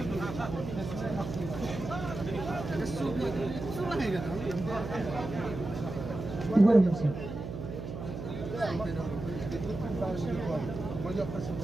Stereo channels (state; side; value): noise; right; hum, 7 dB below the sound